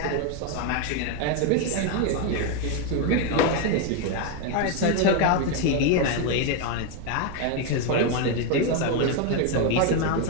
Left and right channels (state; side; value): different; both; correlation 0.01